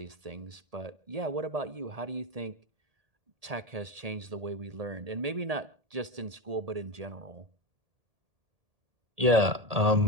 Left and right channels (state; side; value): late; left; 1.8 ms